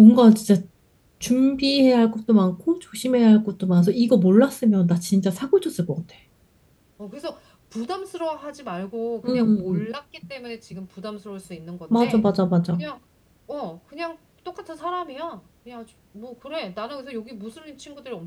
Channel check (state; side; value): identical; both; correlation 1.00